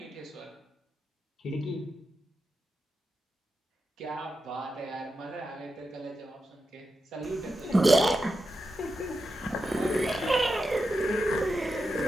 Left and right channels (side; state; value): both; normal; correlation 0.88